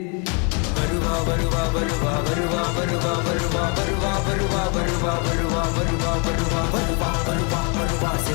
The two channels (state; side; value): quieter; right; 35.7 dB